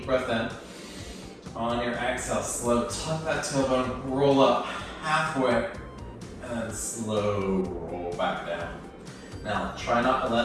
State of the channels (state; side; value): identical; both; correlation 1.00